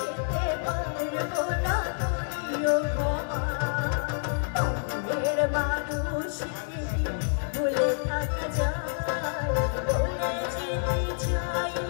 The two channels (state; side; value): silent; right; digital silence